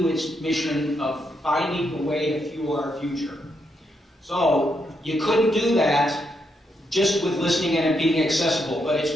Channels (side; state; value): both; normal; correlation 0.80